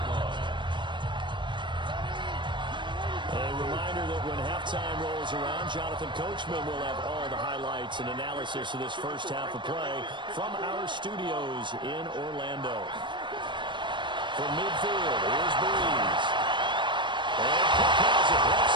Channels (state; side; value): late; left; 0.23 ms